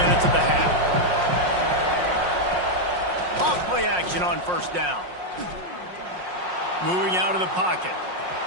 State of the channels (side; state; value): left; late; 5.6 ms